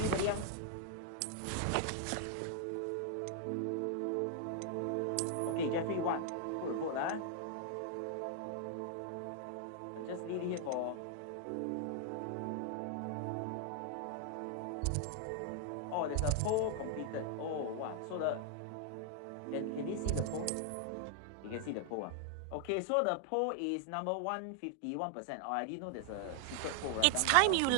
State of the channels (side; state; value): both; different; correlation 0.00